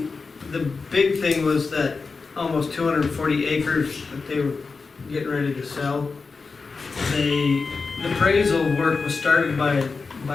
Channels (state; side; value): quieter; right; 4.5 dB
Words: the big thing was that almost 240 acres that they were getting ready to sell. The appraisal work was started by